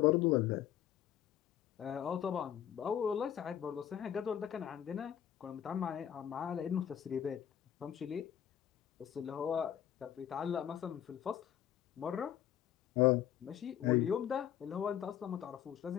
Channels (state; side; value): quieter; right; 10.3 dB